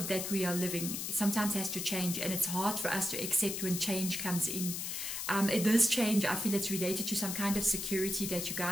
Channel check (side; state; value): left; noise; hiss, 4 dB below the sound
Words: that we are living sometimes has to change, and it's hard for us to accept when change comes in. This change, I feel it's related to some kind of security that you